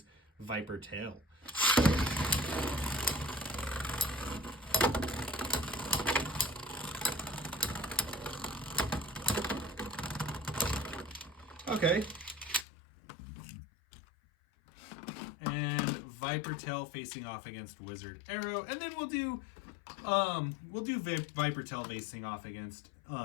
Viper Tail. Okay. And Viper Tail facing off against Wizard Arrow. And then we'll do Viper Tail facing off against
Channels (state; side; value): drops out; right; at 12.7 s